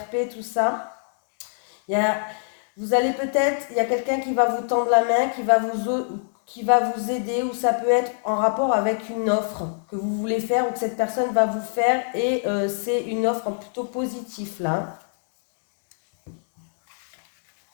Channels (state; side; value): silent; right; digital silence